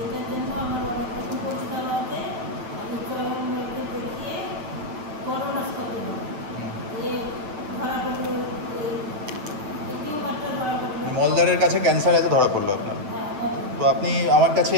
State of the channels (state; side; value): late; left; 8.1 ms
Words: মলদ্বারের কাছে ক্যান্সার আছে ধরা পড়লো আপনার। তো আপনি আমার কাছে